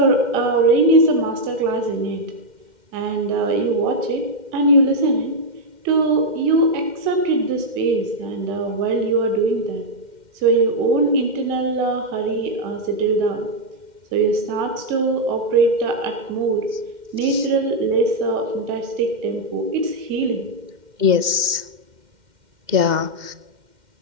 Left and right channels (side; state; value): left; late; 2.1 ms